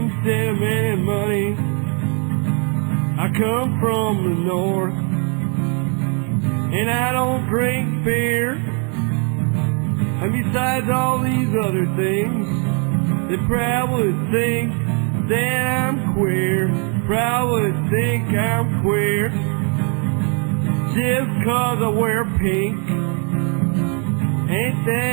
send them any money. I come from the north, and I don't drink beer. And besides all these other things, they probably think that I'm queer, probably think I'm queer, just 'cause I wear pink. Ain't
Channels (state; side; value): quieter; left; 37.0 dB